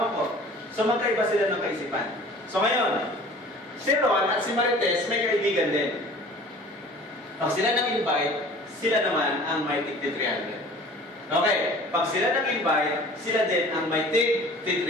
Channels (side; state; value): both; normal; correlation 0.46